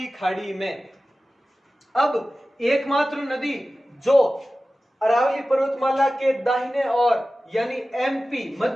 खाड़ी में। अब एकमात्र नदी जो अरावली पर्वतमाला के दाहिने और यानी एमपी,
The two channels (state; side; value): normal; both; correlation 0.95